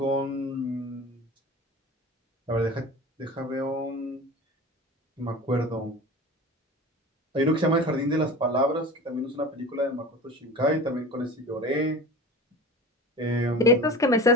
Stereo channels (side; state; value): both; normal; correlation 0.35